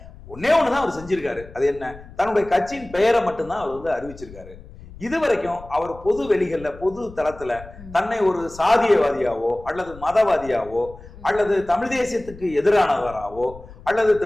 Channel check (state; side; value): noise; left; rumble, 18 dB below the sound